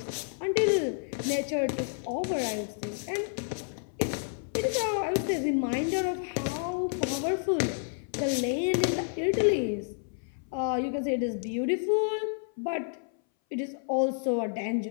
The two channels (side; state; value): right; silent; 58 dB below the other